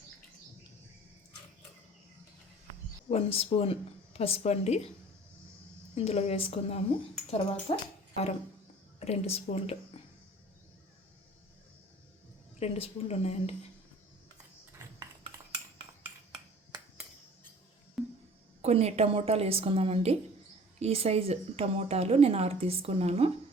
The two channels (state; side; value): normal; both; correlation 0.47